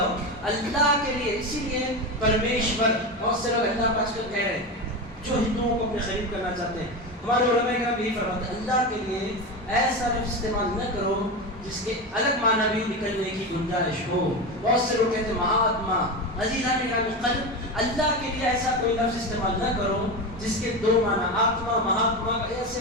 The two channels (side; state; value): both; normal; correlation 0.20